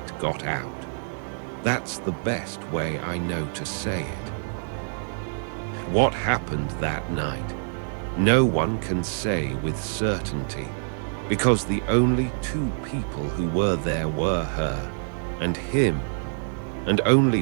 got out. That's the best way I know to say it. What happened that night, no one can say with certainty, because the only 2 people who were there were her and him, and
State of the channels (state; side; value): silent; left; digital silence